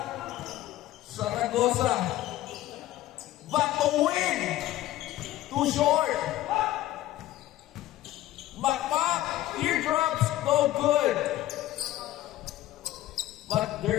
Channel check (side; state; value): right; quieter; 15.0 dB